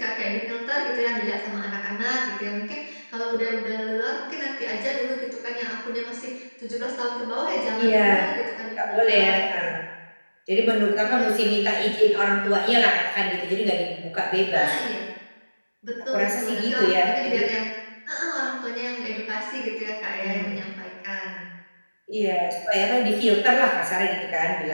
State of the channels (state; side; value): inverted; both; correlation -1.00